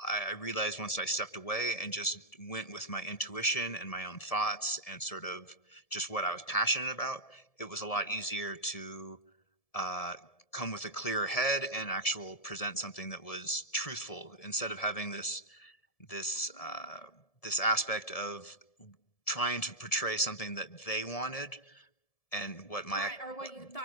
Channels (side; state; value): right; late; 1.7 ms